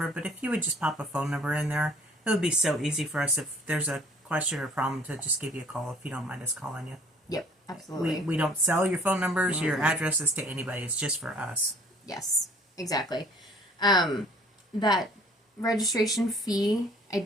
but if you would just pop a phone number in there, it would be so easy for us if there's a question or problem to just give you a call if you don't mind us calling you. Yep, absolutely. We don't sell your phone numbers, your addresses to anybody. It's just for us. Yes, exactly. That registration fee, I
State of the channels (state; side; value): normal; both; correlation 0.54